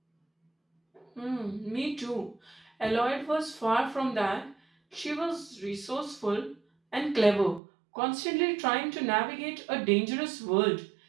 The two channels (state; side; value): drops out; left; at 7.6 s